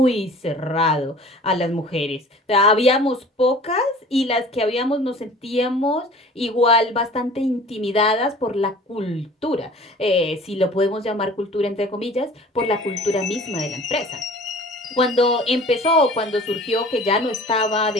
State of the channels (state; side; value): normal; both; correlation 0.45